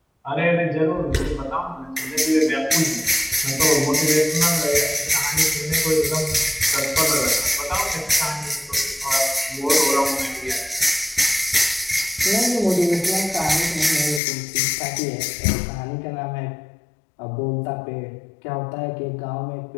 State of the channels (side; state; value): right; drops out; at 14.2 s